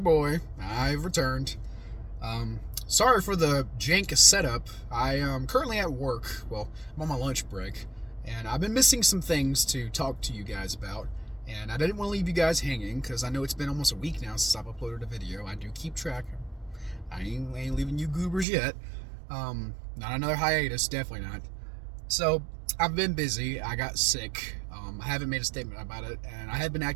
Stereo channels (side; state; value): left; drops out; at 18.4 s